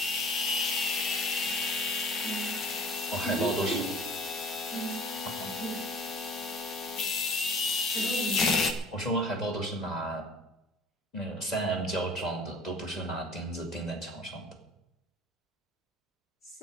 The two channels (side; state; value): both; normal; correlation 0.48